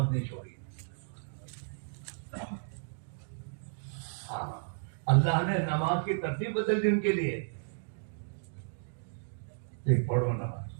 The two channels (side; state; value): left; silent; digital silence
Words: نہیں چھوڑی۔ ہاں اللہ نے نماز کی ترتیب بدل دی ان کے لیے، ایک پڑھو نماز